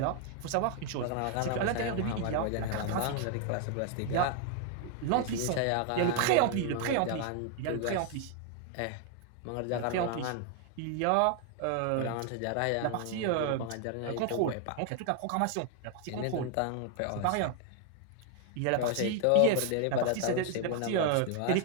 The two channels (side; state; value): both; different; correlation 0.00